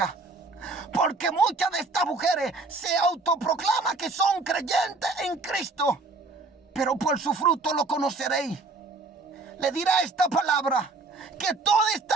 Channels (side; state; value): left; quieter; 3.6 dB